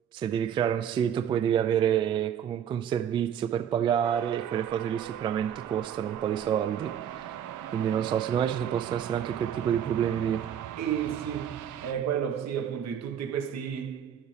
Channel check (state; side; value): quieter; left; 9.1 dB